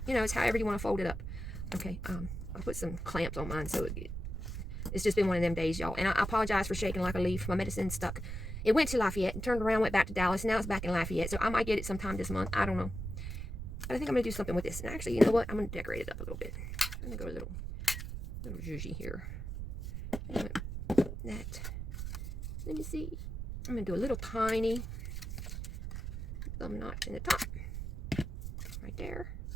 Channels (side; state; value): right; noise; rumble, 5 dB below the sound